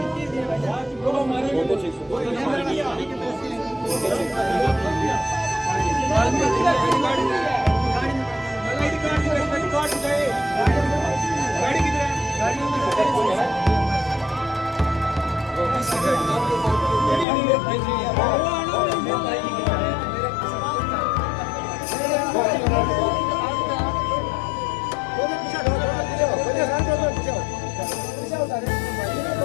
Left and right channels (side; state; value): right; drops out; at 17.2 s